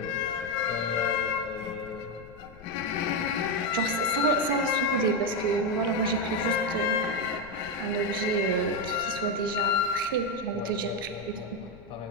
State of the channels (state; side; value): noise; left; rumble, 21 dB below the sound